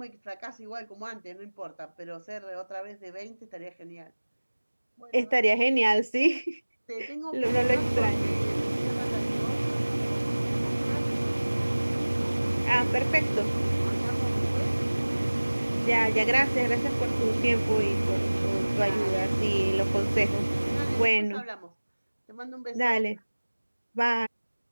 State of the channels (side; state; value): both; inverted; correlation -1.00